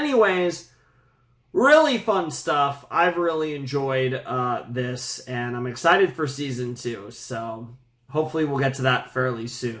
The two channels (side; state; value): both; identical; correlation 1.00